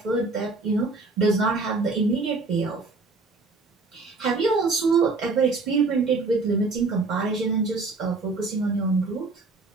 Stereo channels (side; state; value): left; quieter; 3.7 dB